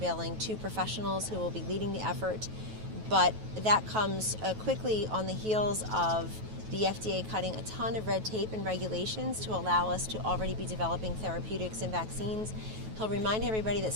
2 professionals who will be leading the effort. But that comes quickly on the heels of the FDA cutting a ton of red tape and regulations to allow us to already be developing therapeutics and vaccines. He'll remind everybody that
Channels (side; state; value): left; late; 9.2 ms